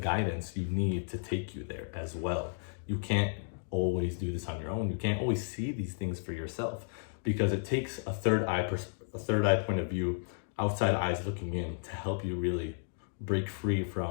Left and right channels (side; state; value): right; silent; digital silence